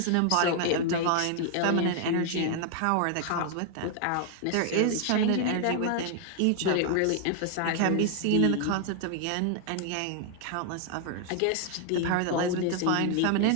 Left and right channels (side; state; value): both; different; correlation 0.00